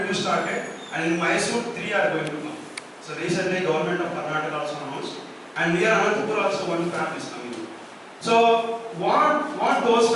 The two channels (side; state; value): both; identical; correlation 1.00